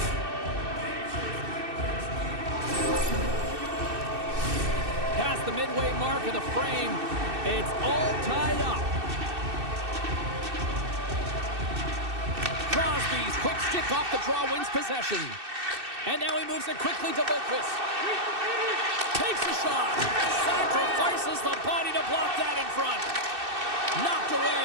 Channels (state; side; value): late; left; 2.6 ms